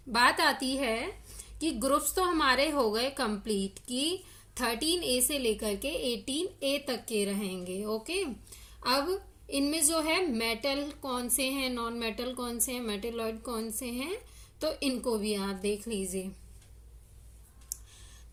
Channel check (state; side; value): identical; both; correlation 1.00